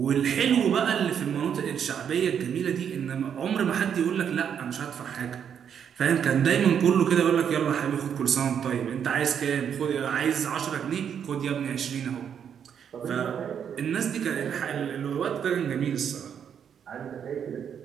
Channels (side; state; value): left; quieter; 8.1 dB